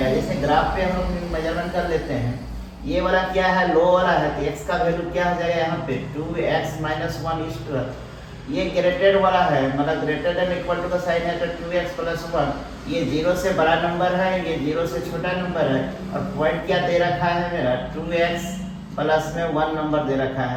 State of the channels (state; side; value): identical; both; correlation 1.00